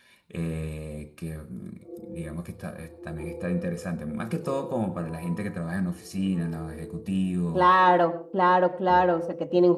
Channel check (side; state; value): both; identical; correlation 1.00